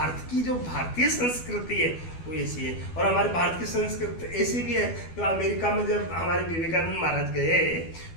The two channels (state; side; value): late; right; 12 ms